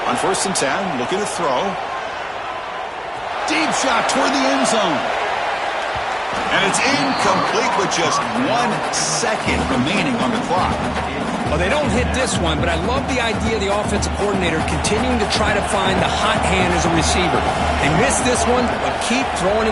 On 1st and 10, looking to throw. Deep shot toward the end zone. And it's incomplete with just 1 second remaining on the clock. Well, they don't hit this one, but I love the idea of the offensive coordinator continuing to try to find the hot hand as a receiver. They missed this one, but keep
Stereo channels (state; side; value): identical; both; correlation 1.00